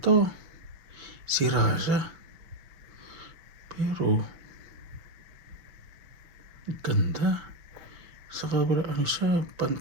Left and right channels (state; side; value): late; left; 6.0 ms